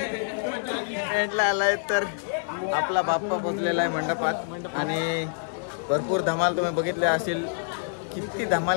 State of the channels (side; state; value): right; silent; digital silence